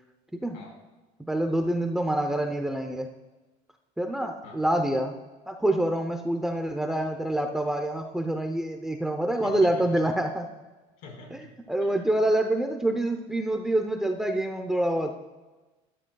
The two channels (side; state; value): both; normal; correlation 0.87